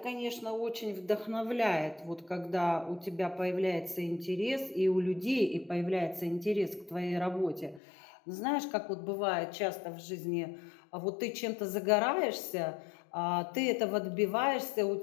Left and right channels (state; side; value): drops out; right; at 7.8 s